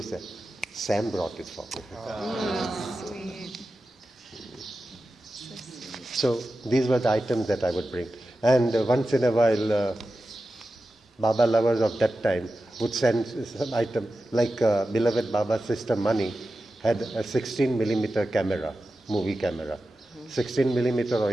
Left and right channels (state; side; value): normal; both; correlation 0.93